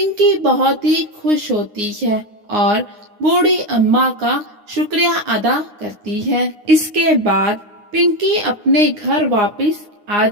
बहुत ही खुश होती है और बूढ़ी अम्मा का शुक्रिया अदा करती है। इसके बाद पिंकी अपने घर वापस आ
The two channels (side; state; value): left; late; 9.7 ms